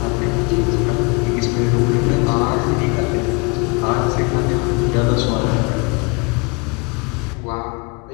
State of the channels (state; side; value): quieter; right; 30.2 dB